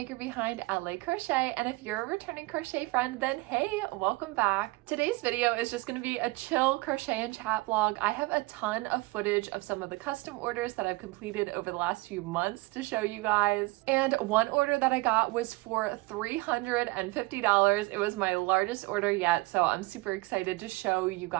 behind LA Crochet, and if you're a returning crochet friend, then hey, welcome back. Today's video is just going to be a chill crochet and chat vlog. I have a ton of footage of some of the custom orders that I've completed over the last few months to show you guys. And one order that I got was for $350. It was my largest order yet, so I'm super excited to show you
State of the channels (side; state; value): left; quieter; 22.8 dB